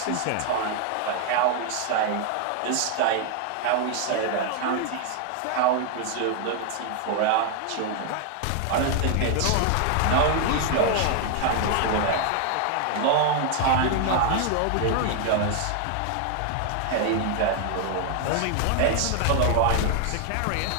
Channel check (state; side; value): different; both; correlation 0.00